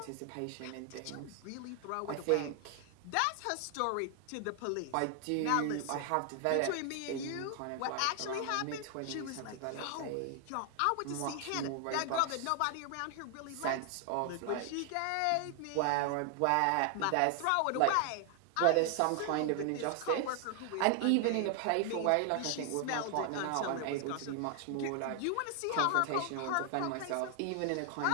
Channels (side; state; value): both; different; correlation 0.00